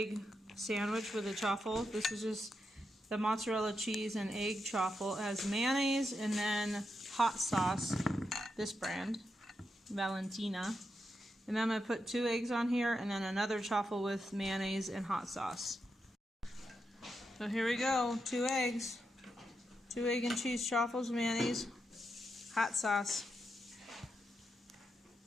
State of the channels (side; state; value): both; normal; correlation 0.85